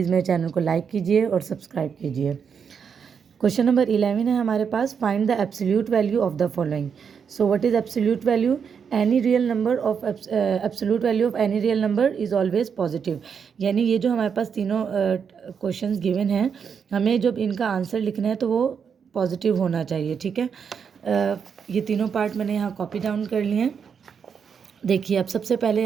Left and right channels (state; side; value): quieter; left; 6.8 dB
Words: मेरे चैनल को लाइक कीजिए और सब्सक्राइब कीजिए। क्वेश्चन नंबर 11 है हमारे पास, find the absolute value of the following. So what is absolute value? Any real number of absolute value of any real number is always positive. यानी ये जो हमारे पास तीनों क्वेश्चंस गिवन हैं, हमें जब इनका आंसर लिखना है तो वो पॉजिटिव होना चाहिए। ठीक है, ये तीनों पार्ट मैंने यहाँ कॉपी डाउन कर लिए हैं। देखिए, अब सबसे पहले